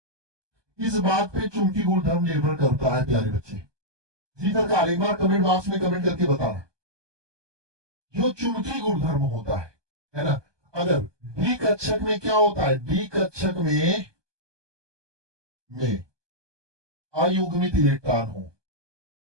किस बात पे चुंबकीय गुणधर्म निर्भर करता है प्यारे बच्चे? जी सरकार, एक बार कमेंट बॉक्स में कमेंट करके बताना। जो चुंबकीय गुणधर्म होता है ना, अगर डी कक्षक में क्या होता है? डी कक्षक में अयुग्मित इलेक्ट्रॉन हो,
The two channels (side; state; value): left; late; 1.2 ms